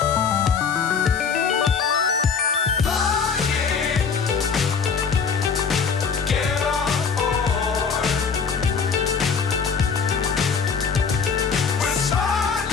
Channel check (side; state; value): right; quieter; 5.9 dB